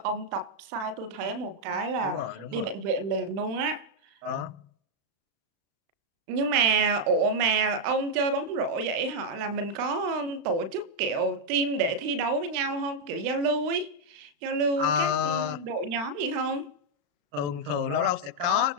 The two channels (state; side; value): late; left; 36 ms